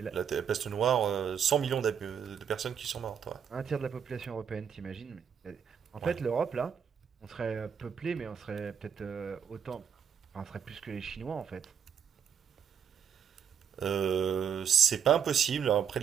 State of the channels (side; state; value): left; quieter; 7.7 dB